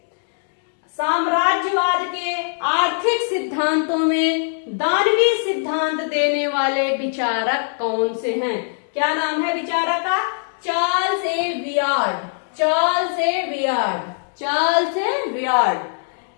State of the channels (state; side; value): silent; right; digital silence